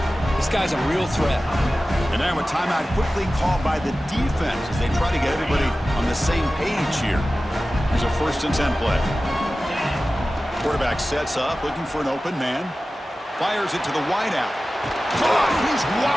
This guy's a real threat. And now a timeout quickly called by the defense as they try to get everybody on the same page here. Here's a 1st and 10 play. Quarterback sets up, looking for an open man. Fires it to the wideout. Caught! He's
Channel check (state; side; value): normal; both; correlation 0.96